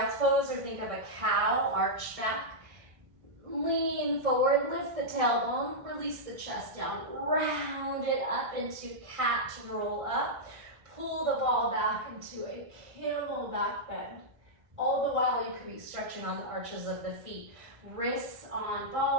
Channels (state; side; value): late; left; 1.6 ms